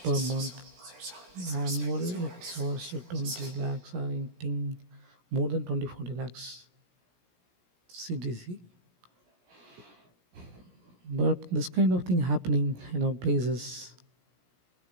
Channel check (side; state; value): left; late; 17 ms